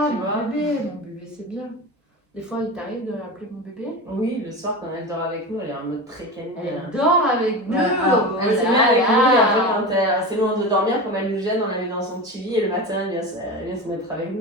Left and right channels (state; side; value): normal; both; correlation 0.26